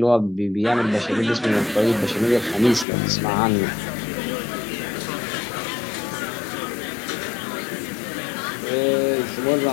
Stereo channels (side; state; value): right; drops out; at 2.9 s